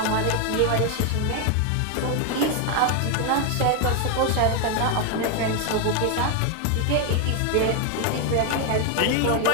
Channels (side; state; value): both; different; correlation 0.01